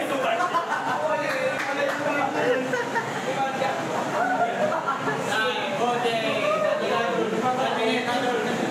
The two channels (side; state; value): both; identical; correlation 1.00